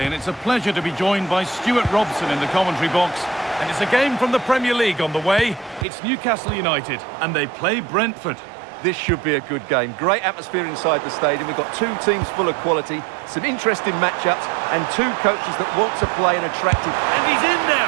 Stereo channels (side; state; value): left; drops out; at 5.9 s